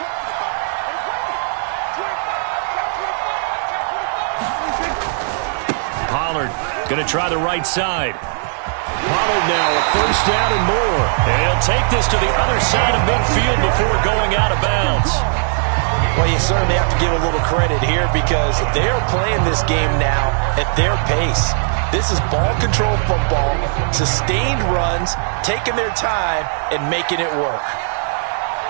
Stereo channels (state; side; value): silent; left; digital silence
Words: Pollard going to try the right side. Pollard now a first down and more. And he'll take this to the other side of midfield before going out of bounds. Well, you certainly have to give a little credit here because they're playing this game now at their pace. This is ball control football, sustained runs, taking their time, and making it work.